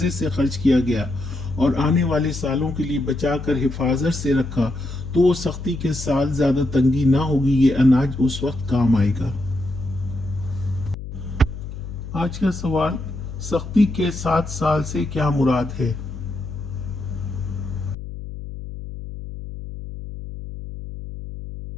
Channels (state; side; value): noise; left; hum, 10 dB below the sound